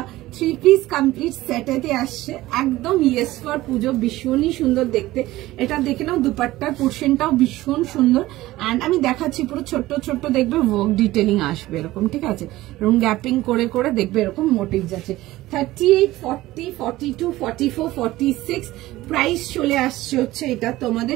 3 piece complete সেটেতে আসছে, একদম ইয়েস ফর পুজো, ভীষণই সুন্দর দেখতে। এটা দেখে নাও, দুপাট্টার পোর্শনটাও ভীষণ সুন্দর, অ্যান্ড আমি দেখাচ্ছি পুরো ছোট্ট ছোট্ট দেখবে ওয়ার্ক ডিটেলিং আসবে এরকম, ঠিক আছে? এবং গ্যাপিং করে করে দেখবে এরকম মোটিভ যাচ্ছে। 38 40 42 44 46 প্রাইস চলে আসছে হচ্ছে এটা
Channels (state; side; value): quieter; left; 17.1 dB